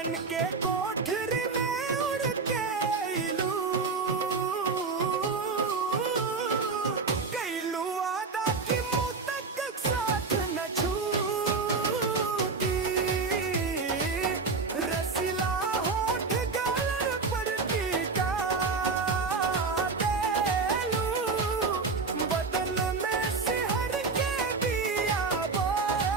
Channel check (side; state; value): left; quieter; 4.4 dB